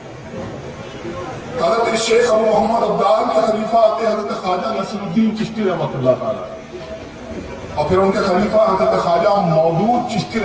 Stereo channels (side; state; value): both; identical; correlation 1.00